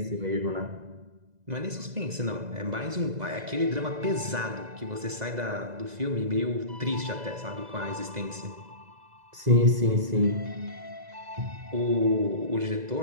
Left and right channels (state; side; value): late; left; 2.0 ms